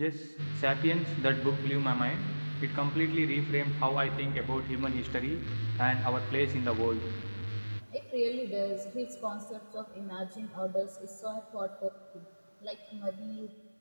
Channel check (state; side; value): inverted; both; correlation -1.00